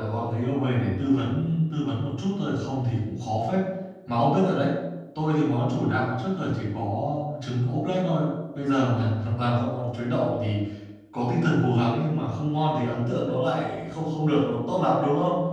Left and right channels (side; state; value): both; identical; correlation 1.00